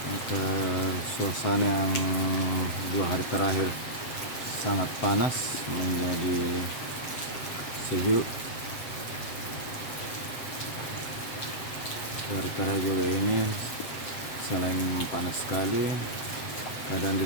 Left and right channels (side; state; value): right; late; 7.8 ms